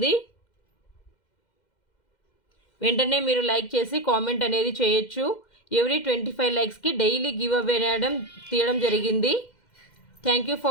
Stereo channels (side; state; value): right; late; 2.1 ms